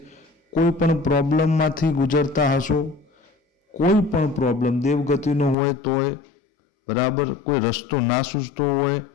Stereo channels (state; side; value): drops out; right; at 5.6 s